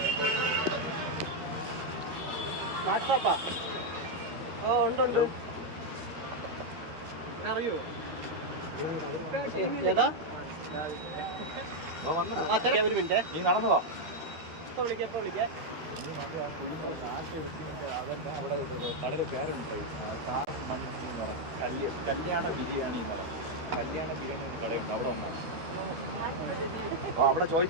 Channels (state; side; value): late; left; 12 ms